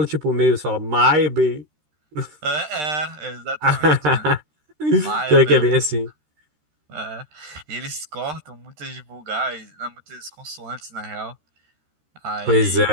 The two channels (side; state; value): left; late; 13 ms